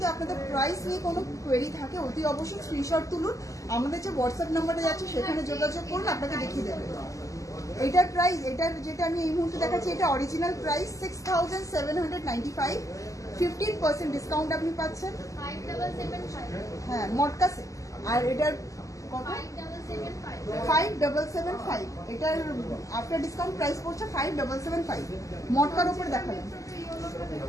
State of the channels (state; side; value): late; right; 0.16 ms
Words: আপনাদের প্রাইস নিয়ে কোনো কোয়েরি থাকে অতি অবশ্যই স্ক্রিনশট তুলুন, আমাদের যে হোয়াটসঅ্যাপ নাম্বারে যাচ্ছে সেখানে যোগাযোগ করুন, আপনাকে দেখিয়ে দেবে। এটার প্রাইস, এটার যেটা আমি এই মুহূর্তে দেখাচ্ছি, এটা অরিজিনাল প্রাইস 6795, 15% ডিসকাউন্ট আপনি পাচ্ছেন। 5775 হ্যাঁ, মটকা সেট। আর এটার কত? 5775, এটার আফটার ডিসকাউন্ট প্রাইস পড়ছে 5775। মটকার উপর দেখাবেন।